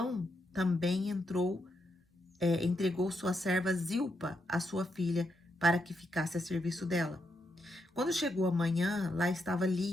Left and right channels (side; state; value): both; normal; correlation 0.81